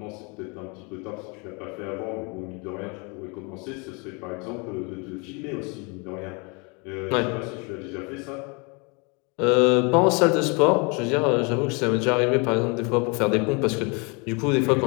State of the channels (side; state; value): right; quieter; 31.2 dB